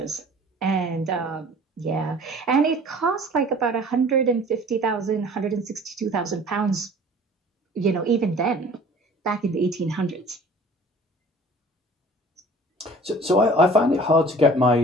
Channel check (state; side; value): normal; both; correlation 0.48